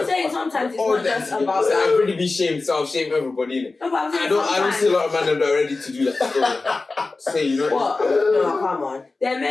saying sometimes it's not just about. I'd really be shamed, so I'll shame everybody, innit? No, but I'm saying I don't see a lot of men that are ready to do that. Say, you know. What? No, come on. There are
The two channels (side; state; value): right; quieter; 3.6 dB